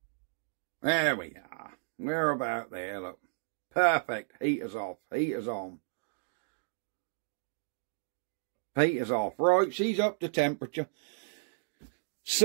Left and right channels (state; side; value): silent; left; digital silence